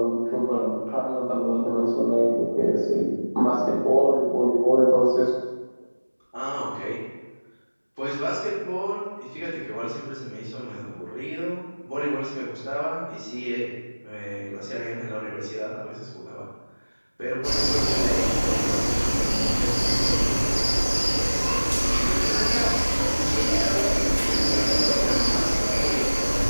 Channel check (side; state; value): both; inverted; correlation -1.00